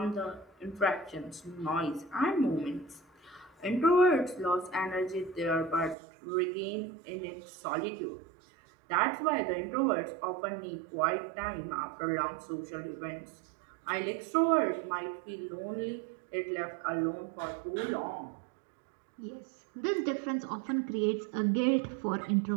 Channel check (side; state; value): left; drops out; at 6.0 s